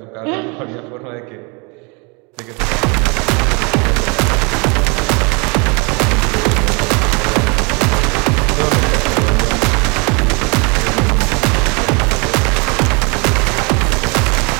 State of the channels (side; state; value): left; quieter; 30.7 dB